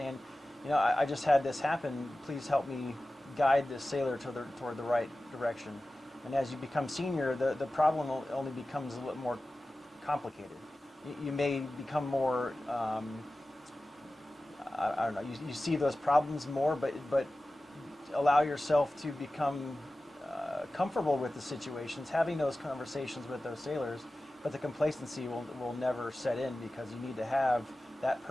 I just had this happen. Please help me guide this sailor toward the right direction. And as you become senior, the problem only becomes a little more complicated. You may become more, I don't know, you see those problems more, but allow yourself to become comfortable with the situations, having those conversations with those sailors, but the complacency will never set in because you need to have that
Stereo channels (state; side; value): normal; both; correlation 0.96